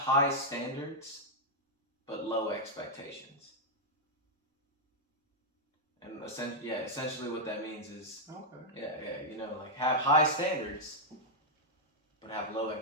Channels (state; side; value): normal; both; correlation -0.03